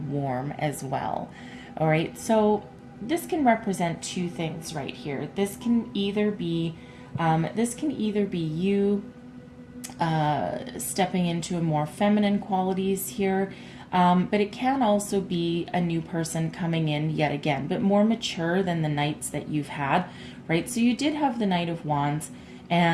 warm as well, all right? So this can represent two things right here. This can either be you stepping into a more feminine qualities here, but it can also be a new person coming in yet again, but more mature than the knights that you've had, right? So you did have the Knight of Wands,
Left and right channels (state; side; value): identical; both; correlation 1.00